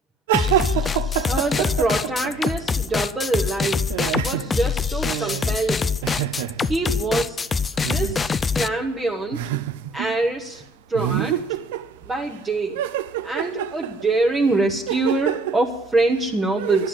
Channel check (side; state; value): both; normal; correlation 0.59